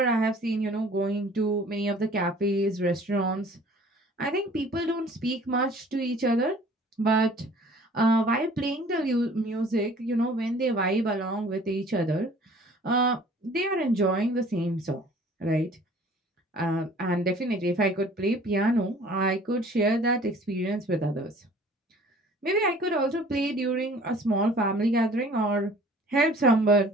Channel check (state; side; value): normal; both; correlation 0.51